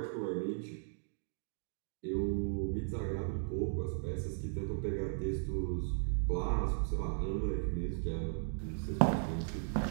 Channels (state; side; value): silent; left; digital silence